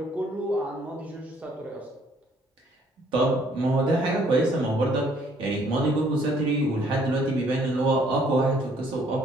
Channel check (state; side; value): normal; both; correlation 0.63